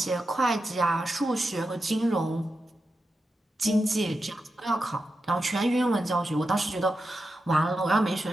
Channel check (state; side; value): normal; both; correlation 0.89